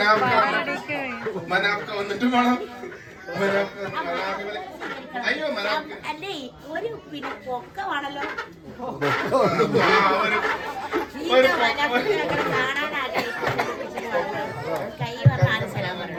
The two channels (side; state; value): both; identical; correlation 1.00